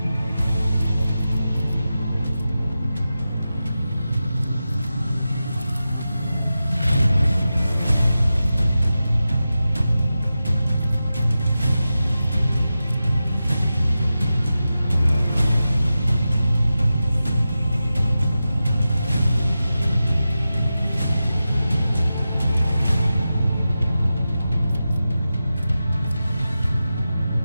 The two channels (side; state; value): both; inverted; correlation -0.93